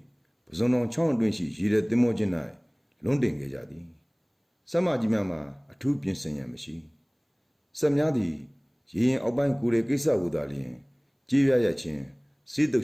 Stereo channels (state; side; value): identical; both; correlation 1.00